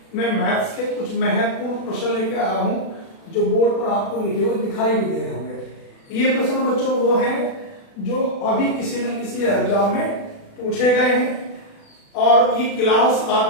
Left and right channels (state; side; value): late; right; 36 ms